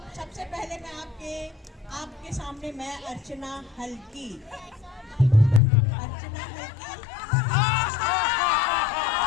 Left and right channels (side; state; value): right; drops out; at 5.6 s